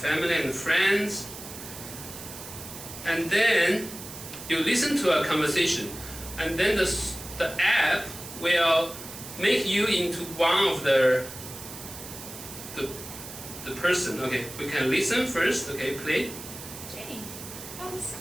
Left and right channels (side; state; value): right; noise; hiss, 12 dB below the sound